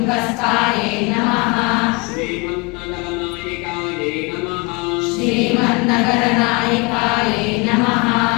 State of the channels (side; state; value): right; quieter; 27.1 dB